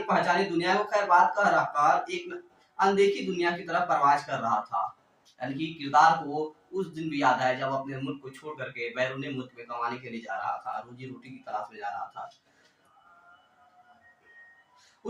पहचानी दुनिया को खैर बात कह रखकर एक अनदेखी दुनिया की तरफ परवाज कर रहा था। यानी कि किरदार को उस दिन भी याद है जब अपने मुल्क को छोड़ करके बैरूनी मुल्क में कमाने के लिए जा रहा था, रोजी रोटी की तलाश में जा रहा था।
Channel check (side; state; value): both; identical; correlation 1.00